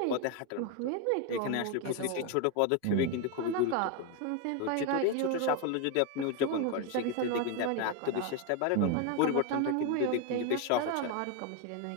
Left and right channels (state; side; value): different; both; correlation 0.01